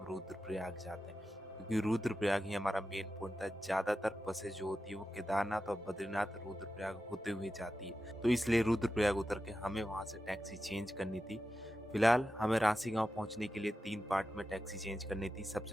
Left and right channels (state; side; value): normal; both; correlation 0.91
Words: रुद्रप्रयाग जाते हैं, क्योंकि रुद्रप्रयाग ही हमारा मेन पॉइंट था। ज़्यादातर बसें जो होती है वो केदारनाथ और बद्रीनाथ रुद्रप्रयाग होते हुए जाती है, तो इसलिए रुद्रप्रयाग उतर के हमें वहाँ से टैक्सी चेंज करनी थी। फिलहाल हमें रांसी गांव पहुंचने के लिए 3 पार्ट में टैक्सी चेंज करनी थी।